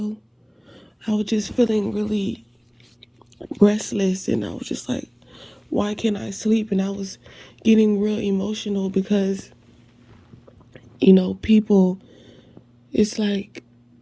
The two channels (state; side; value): identical; both; correlation 1.00